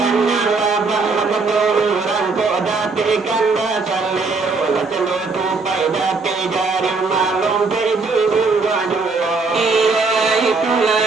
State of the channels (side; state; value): left; quieter; 4.1 dB